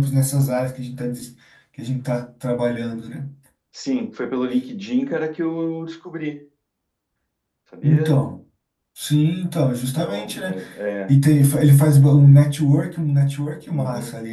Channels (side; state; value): both; identical; correlation 1.00